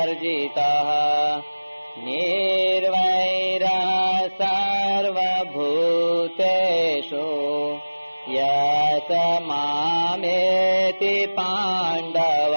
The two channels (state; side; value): inverted; both; correlation -1.00